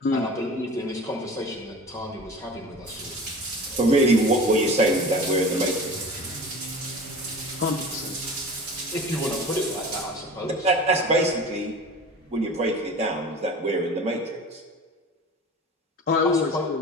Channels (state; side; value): normal; both; correlation 0.38